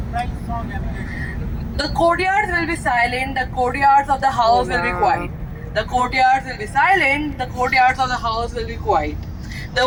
The courtyards will be silent, the courtyards of the house will be quiet. The courtyards will be silent, the courtyards of the house will be quiet. The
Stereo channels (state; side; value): identical; both; correlation 1.00